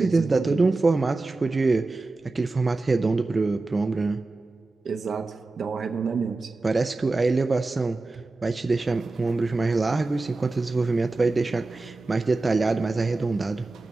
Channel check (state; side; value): quieter; left; 3.3 dB